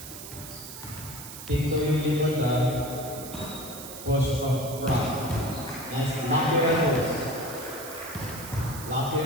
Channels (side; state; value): right; noise; hiss, 12 dB below the sound